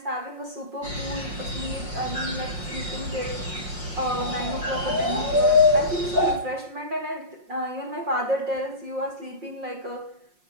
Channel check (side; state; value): left; late; 5.6 ms